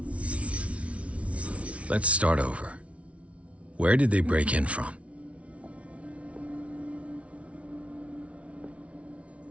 Let's start over. Where did they break in from?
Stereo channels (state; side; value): late; left; 0.063 ms